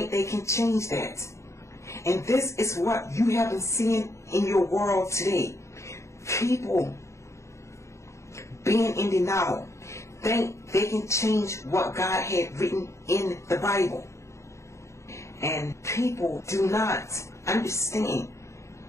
they can change that? And this is what you have been seeing in your world today. People being in denial think they can change what God had written in the Bible. And people do not understand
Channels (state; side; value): late; right; 0.14 ms